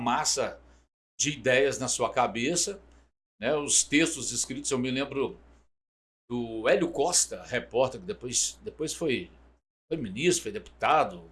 de ideias na sua cabeça. Né, os textos escritos, eu me lembro do Hélio Costa, repórter, que depois foi ministro, foi deputado,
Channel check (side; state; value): both; identical; correlation 1.00